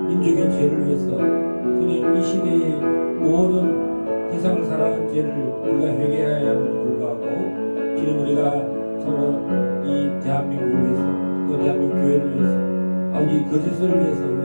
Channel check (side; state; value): both; inverted; correlation -1.00